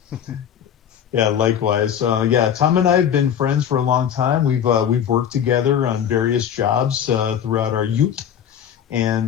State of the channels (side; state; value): right; quieter; 8.9 dB